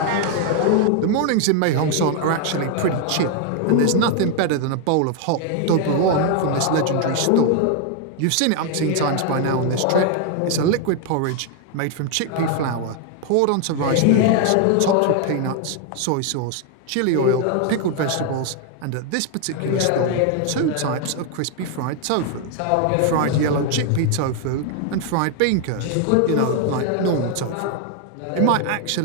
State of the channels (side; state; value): both; different; correlation 0.00